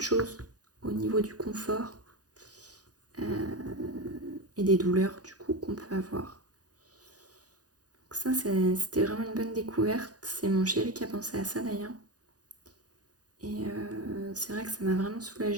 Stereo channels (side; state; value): left; late; 0.68 ms